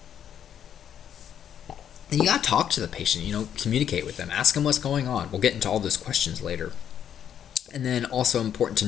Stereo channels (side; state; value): right; quieter; 9.3 dB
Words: And you gotta talk to the patient, communicate with them, ask them what's going on. We'll get into all those questions later. And then also important to